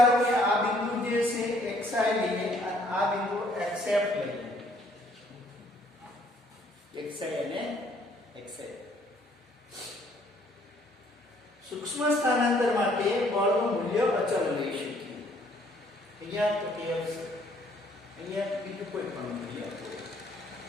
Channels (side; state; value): both; normal; correlation 0.63